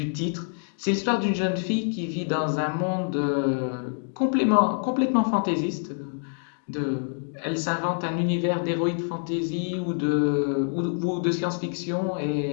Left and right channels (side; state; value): right; silent; digital silence